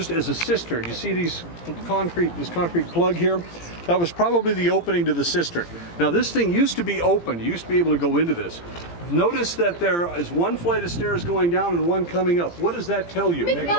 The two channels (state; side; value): late; right; 17 ms